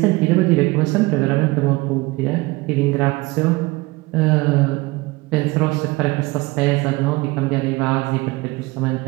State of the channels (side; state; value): left; quieter; 22.2 dB